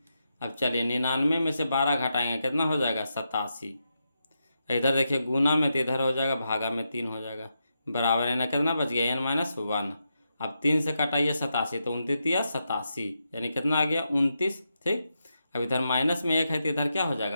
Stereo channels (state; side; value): inverted; both; correlation -0.85